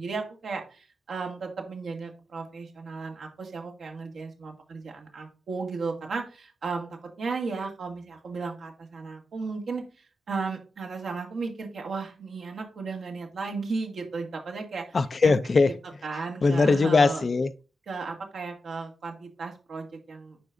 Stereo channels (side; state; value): both; normal; correlation 0.89